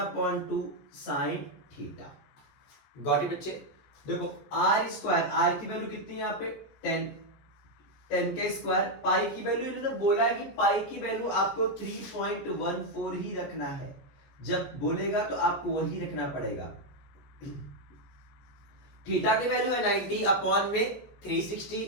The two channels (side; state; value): right; late; 14 ms